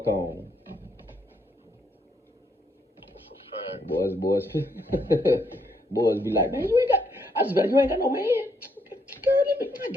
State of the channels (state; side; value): normal; both; correlation 0.73